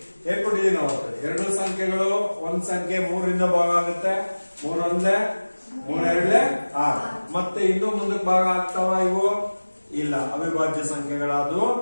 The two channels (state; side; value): inverted; both; correlation -1.00